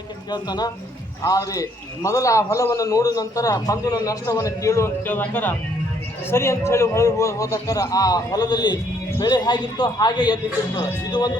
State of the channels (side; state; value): both; normal; correlation 0.67